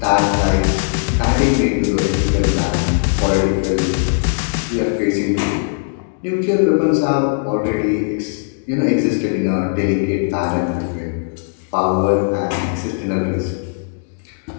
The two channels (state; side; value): silent; right; digital silence